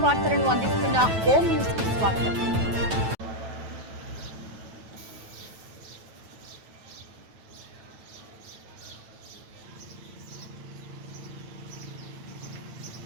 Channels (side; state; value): left; late; 9.1 ms